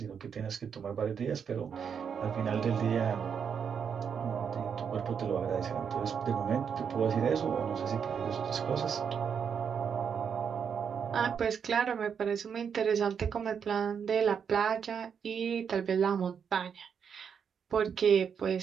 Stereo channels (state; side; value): quieter; left; 7.1 dB